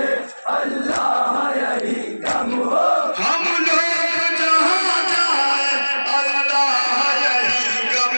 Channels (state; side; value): inverted; both; correlation -1.00